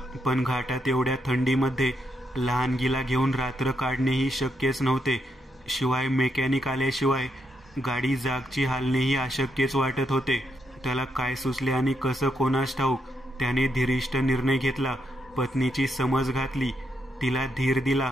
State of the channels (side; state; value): both; normal; correlation 0.80